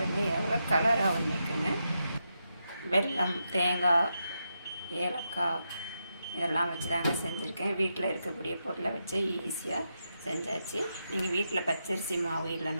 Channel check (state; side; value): inverted; both; correlation -0.85